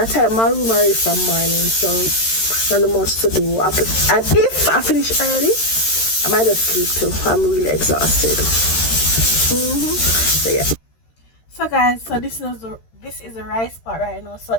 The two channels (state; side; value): late; right; 13 ms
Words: tied up my room already from morning, so not much to do. And if I finish early, I might just sleep too. I'm really exhausted. So yeah. So guys, so this is the rice part right now. So